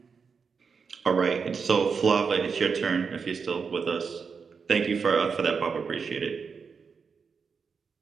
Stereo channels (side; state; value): left; quieter; 5.6 dB